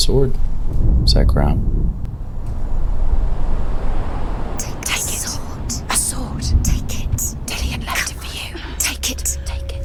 Is that Grom? Take it. A sword. Take it. Dillion left it for you. Take it. Take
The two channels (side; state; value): both; identical; correlation 1.00